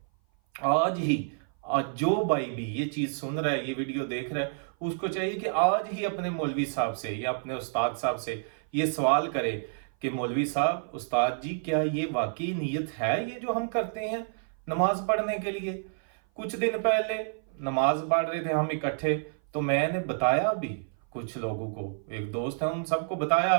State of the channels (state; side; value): silent; left; 56 dB below the other